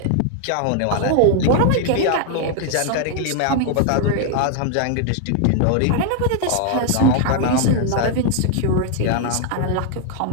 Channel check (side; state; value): both; different; correlation 0.00